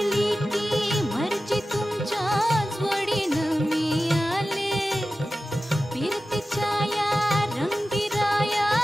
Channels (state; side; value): normal; both; correlation 0.94